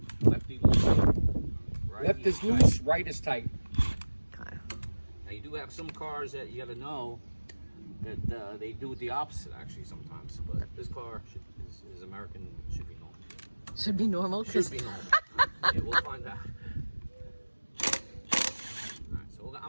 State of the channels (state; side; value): inverted; both; correlation -1.00